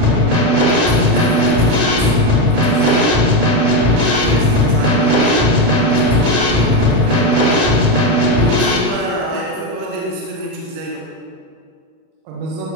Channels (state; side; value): late; left; 36 ms